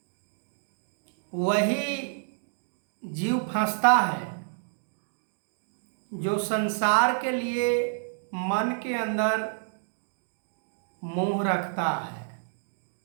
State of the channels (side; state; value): left; silent; digital silence